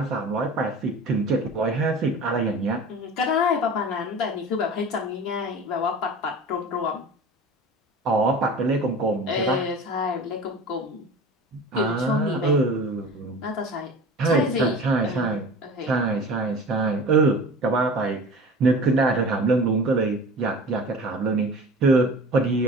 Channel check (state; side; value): normal; both; correlation 0.38